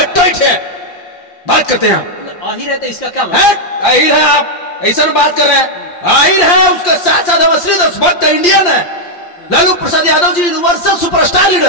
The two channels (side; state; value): right; late; 5.7 ms